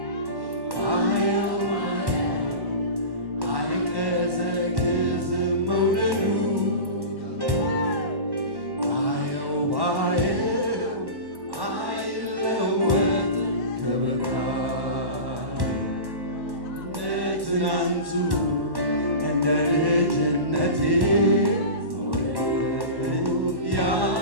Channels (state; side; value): late; left; 1.1 ms